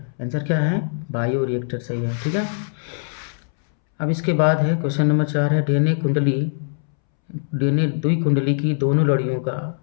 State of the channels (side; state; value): right; silent; 64 dB below the other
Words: आंसर क्या है? बायो रिएक्टर सही है, ठीक है। अब इसके बाद है क्वेश्चन नंबर 4 है, डीएनए द्विकुंडली की दोनों लड़ियों